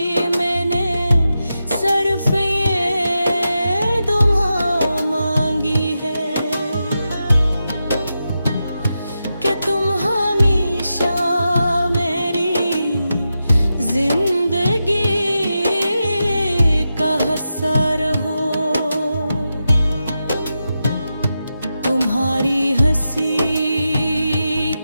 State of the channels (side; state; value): both; inverted; correlation -0.89